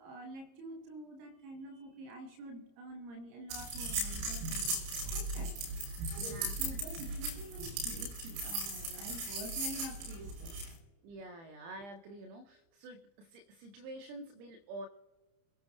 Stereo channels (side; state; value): left; late; 30 ms